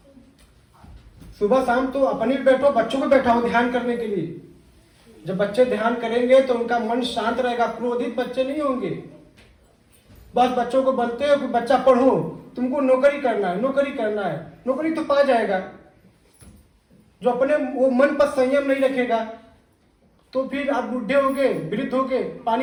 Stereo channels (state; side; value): identical; both; correlation 1.00